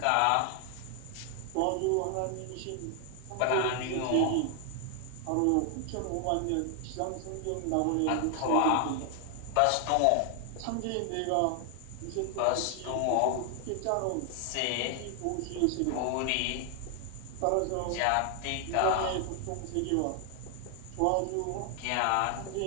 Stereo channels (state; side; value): different; both; correlation 0.00